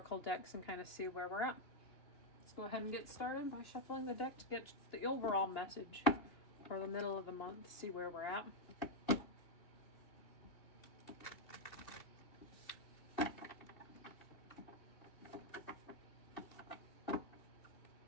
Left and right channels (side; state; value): right; late; 2.9 ms